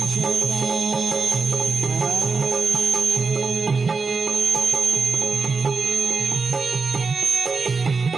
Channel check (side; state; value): left; quieter; 4.5 dB